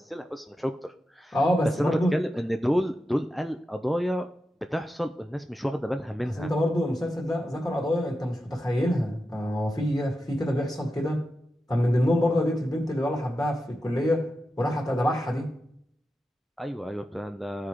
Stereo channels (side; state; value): both; normal; correlation 0.90